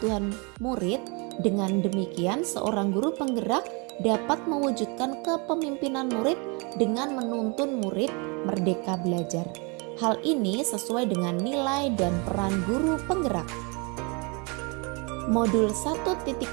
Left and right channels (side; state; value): left; quieter; 31.6 dB